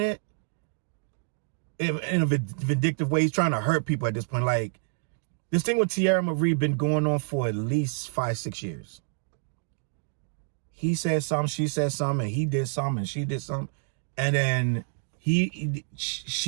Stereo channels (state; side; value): silent; left; digital silence